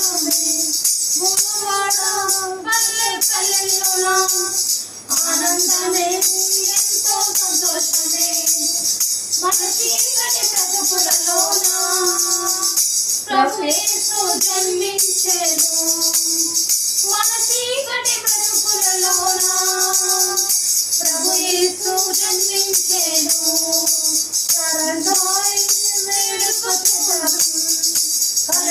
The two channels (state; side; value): identical; both; correlation 1.00